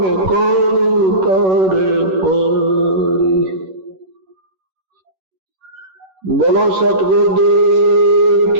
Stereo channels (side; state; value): left; late; 11 ms